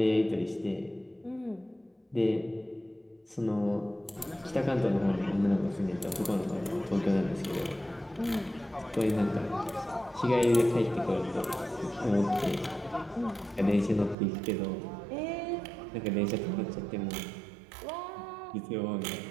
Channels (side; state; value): left; drops out; at 14.2 s